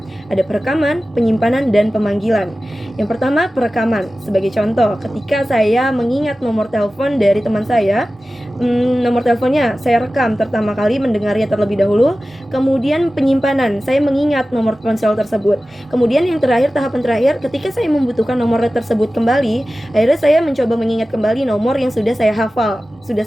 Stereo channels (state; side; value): normal; both; correlation 0.95